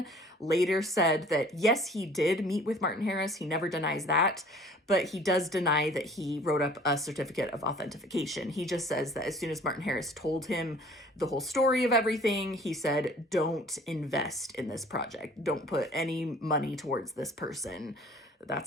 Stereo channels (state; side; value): normal; both; correlation 0.51